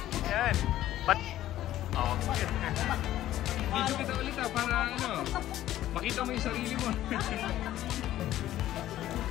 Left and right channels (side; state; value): right; quieter; 13.5 dB